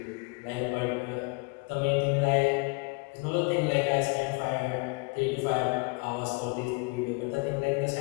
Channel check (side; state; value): right; quieter; 29.4 dB